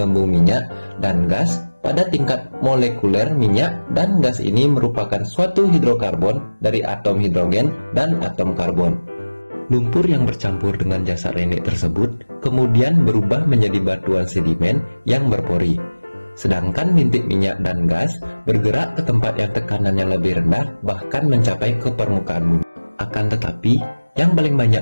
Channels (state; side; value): inverted; both; correlation -1.00